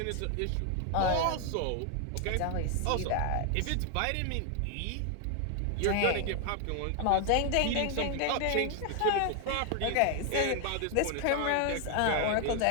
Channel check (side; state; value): both; different; correlation 0.00